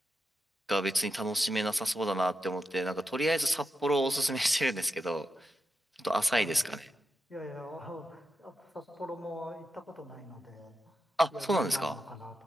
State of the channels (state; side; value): normal; both; correlation 0.88